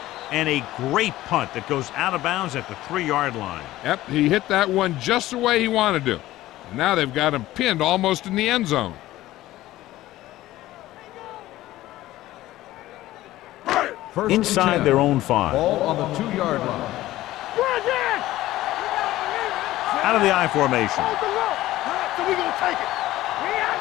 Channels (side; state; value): right; quieter; 15.9 dB